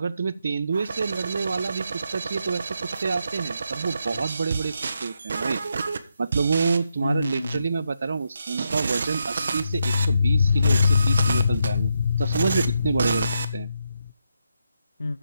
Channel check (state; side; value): inverted; both; correlation -0.82